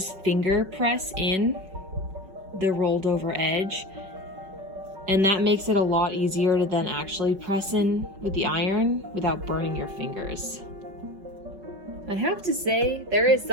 finger press in the rolled over edge. And that makes it a lot easier to then actually press in with the iron without burning your fingers. I have to say, there is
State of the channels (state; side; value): late; left; 5.3 ms